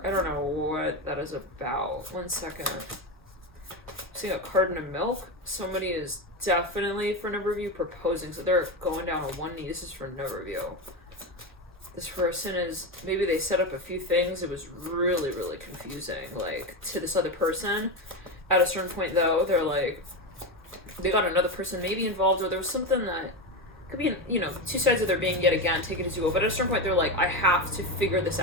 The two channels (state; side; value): normal; both; correlation 0.16